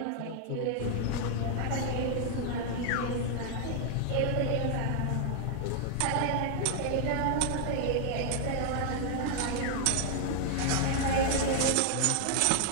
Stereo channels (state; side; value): different; both; correlation 0.00